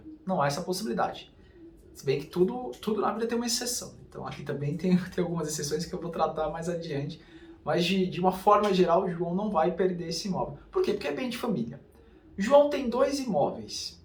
Não há essa possibilidade. Se bem que tudo na vida tem uma exceção. Então aqui também tem algumas exceções que eu vou tratar mais adiante. Mas de uma forma geral, o João não vai perder esse imóvel. Por quê? Porque é bem de família. João tem dois imóveis.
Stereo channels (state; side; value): identical; both; correlation 1.00